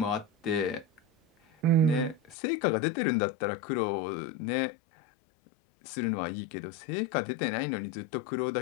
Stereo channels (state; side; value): drops out; right; at 2.4 s